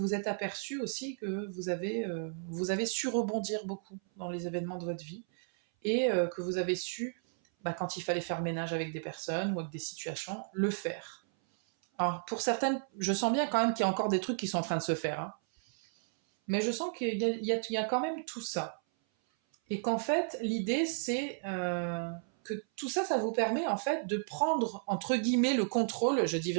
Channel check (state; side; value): silent; left; 55 dB below the other